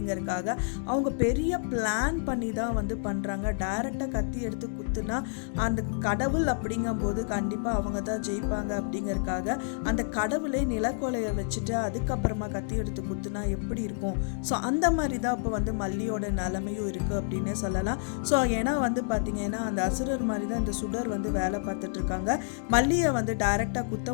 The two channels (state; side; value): silent; right; digital silence